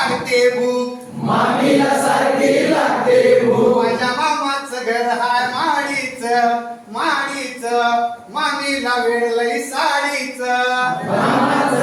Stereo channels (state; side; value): identical; both; correlation 1.00